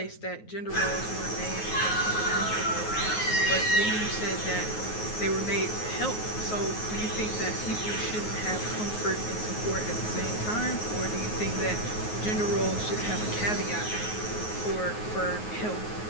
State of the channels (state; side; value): late; right; 9.4 ms